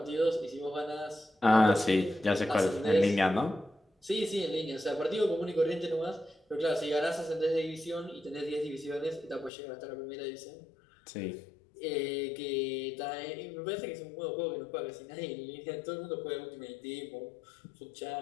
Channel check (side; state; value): right; drops out; at 9.5 s